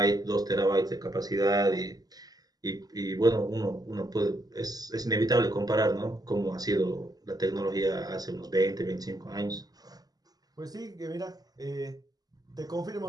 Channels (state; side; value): late; left; 0.19 ms